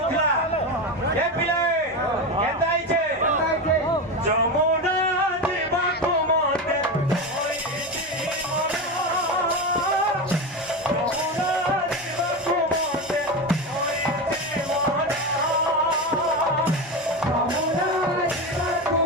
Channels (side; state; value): both; normal; correlation 0.19